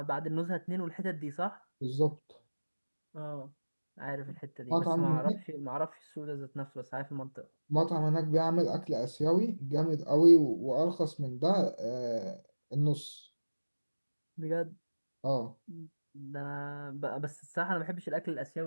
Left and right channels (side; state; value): both; inverted; correlation -1.00